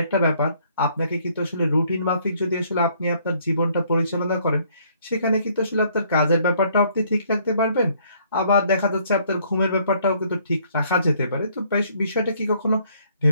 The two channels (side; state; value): both; inverted; correlation -0.64